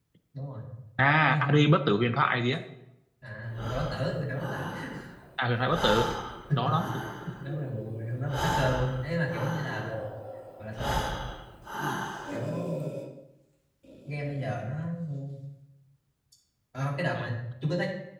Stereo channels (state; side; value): identical; both; correlation 1.00